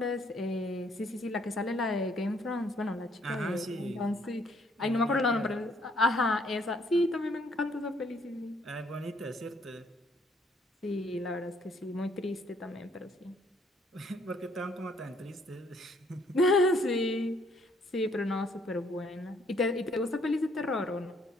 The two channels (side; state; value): both; normal; correlation 0.66